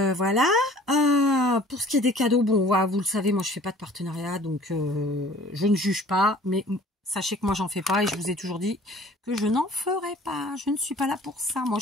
Pour ce qui est des cadeaux, bon, vous le savez, moi, je fais pas de partenariat, donc je ne juge pas, mais sachez que moi, j'en fais pas, et je vous ai toujours dit que je n'en ferai pas. Je ne suis pas là pour ça. Moi,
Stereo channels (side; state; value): both; normal; correlation 0.51